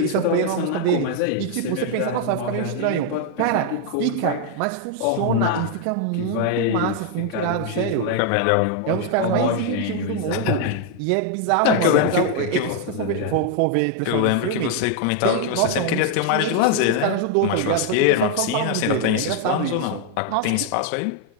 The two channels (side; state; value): both; different; correlation 0.00